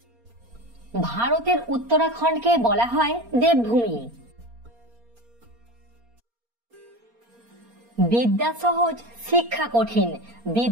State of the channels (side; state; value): left; late; 4.3 ms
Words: ভারতের উত্তরাখণ্ডকে বলা হয় দেবভূমি। বিদ্যা সহজ, শিক্ষা কঠিন,